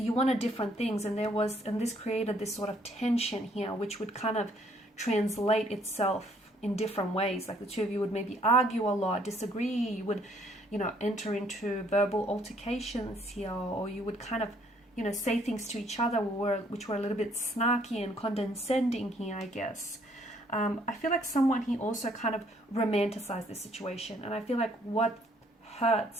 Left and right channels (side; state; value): both; normal; correlation 0.65